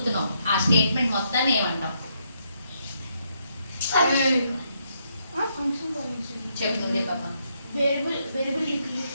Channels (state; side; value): inverted; both; correlation -0.76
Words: ఆ స్టేట్మెంట్ మొత్తాన్ని ఏమంటావు? చెప్పు నువ్వే పాప.